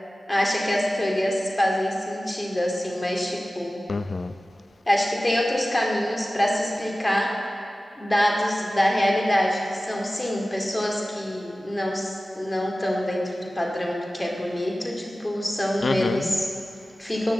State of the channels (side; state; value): both; normal; correlation 0.96